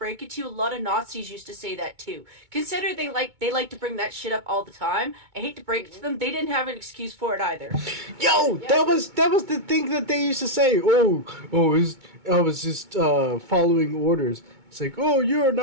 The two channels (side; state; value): left; late; 2.2 ms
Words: it to you, a lot of Nazis used to say that too. Consider they like to bring that shit up all the time. I hate to break it to them, they didn't have an excuse for it either. Yo, that was the thing that they used to say. I was just following orders. It's like, oh, you're a